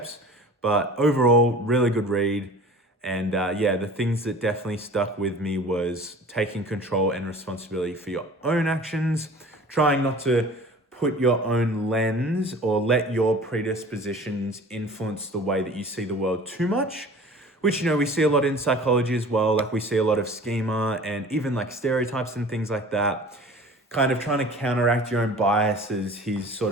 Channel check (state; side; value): normal; both; correlation 0.43